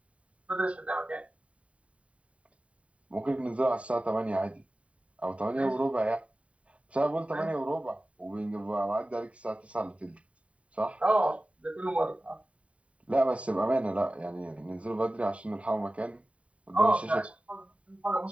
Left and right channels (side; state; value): left; late; 0.065 ms